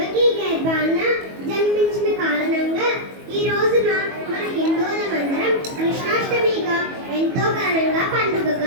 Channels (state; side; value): late; left; 22 ms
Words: గర్భాన జన్మించిన కారణంగా ఈ రోజున మన హిందువులమందరం కృష్ణాష్టమిగా ఎంతో ఘనంగా